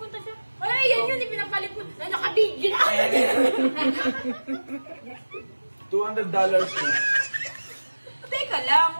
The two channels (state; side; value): inverted; both; correlation -1.00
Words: siya? Ay, yan yun, ipinapalit mo. Na nakabidyo na. $200 each. Teka lang,